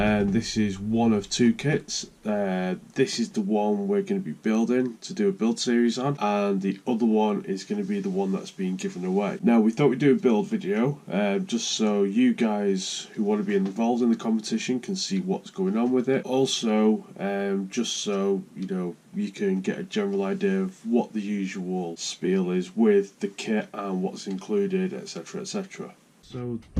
this is one of two kits. This is the one we're going to be building to do a build series on, and the other one is going to be the one that's being given away. Now we thought we'd do a build video just so you guys who want to be involved in the competition can see what's going on with it. Also just so you know, you can get a general idea of what the usual spiel is with the kit and what's included, etc, etc. So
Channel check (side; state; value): both; identical; correlation 1.00